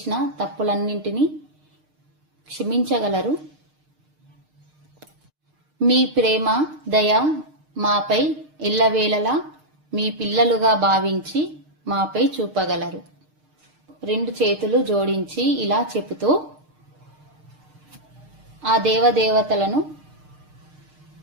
తప్పులన్నింటినీ క్షమించగలరు. మీ ప్రేమ, దయ మాపై ఎల్లవేళలా మీ పిల్లలుగా భావించి మాపై చూపగలరు. 2 చేతులు జోడించి ఇలా చెబుతూ ఆ దేవదేవతలను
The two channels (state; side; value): late; left; 6.6 ms